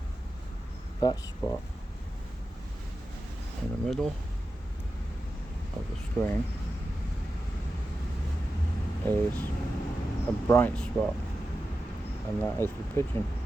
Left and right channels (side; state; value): both; normal; correlation 0.92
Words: that spot in the middle of the screen is a bright spot, and that is the pigeon.